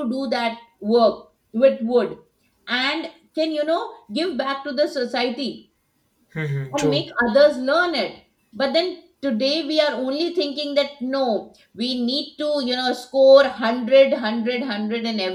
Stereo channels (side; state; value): both; identical; correlation 1.00